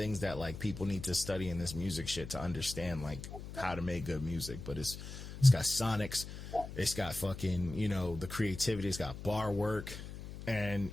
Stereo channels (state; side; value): noise; left; hum, 10 dB below the sound